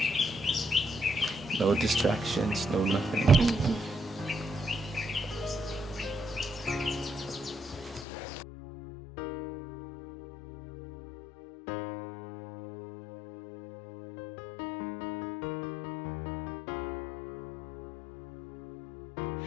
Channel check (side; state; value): right; drops out; at 8.1 s